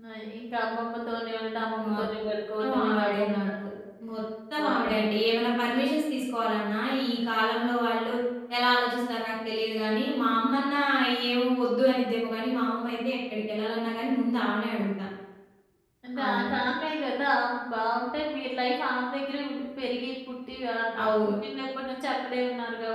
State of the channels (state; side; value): identical; both; correlation 1.00